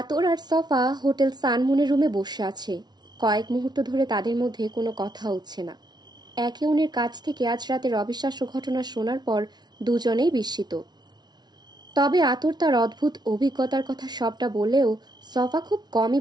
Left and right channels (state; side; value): late; left; 0.20 ms